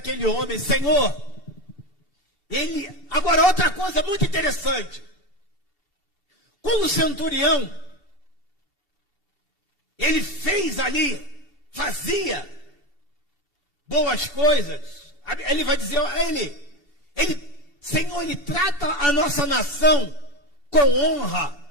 homem. Senhor, ele... Agora, outra coisa muito interessante. Quando o centurião, ele fez ali, fazia boas coisas, ele vai dizer, ele Senhor, Ele trata a nossa nação com honra.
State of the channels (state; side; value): late; left; 2.7 ms